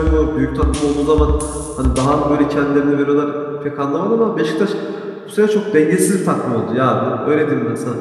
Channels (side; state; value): both; identical; correlation 1.00